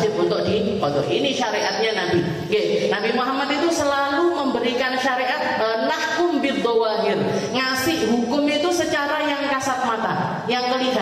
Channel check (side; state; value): both; identical; correlation 1.00